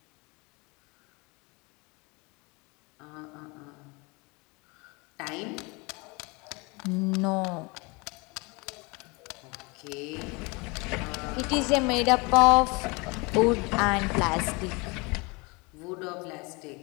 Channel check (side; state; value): right; quieter; 27.6 dB